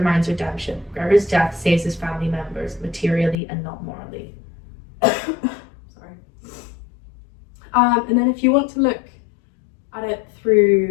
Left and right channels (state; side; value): drops out; right; at 3.4 s